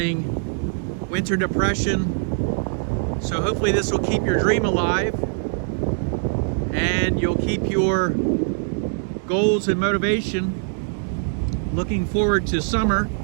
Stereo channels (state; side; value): silent; left; digital silence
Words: winter depression. So hopefully this will keep your dream alive, and you'll keep your goals and motivation looking forward to summer,